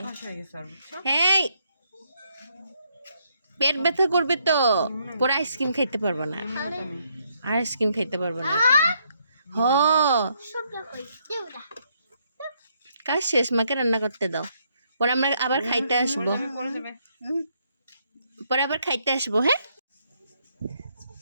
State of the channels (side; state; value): both; inverted; correlation -0.73